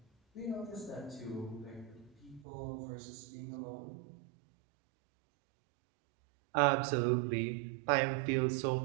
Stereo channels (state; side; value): drops out; left; at 2.5 s